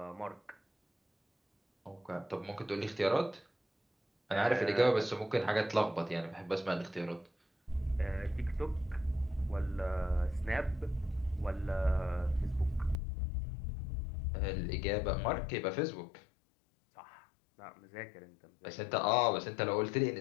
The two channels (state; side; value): drops out; right; at 13.0 s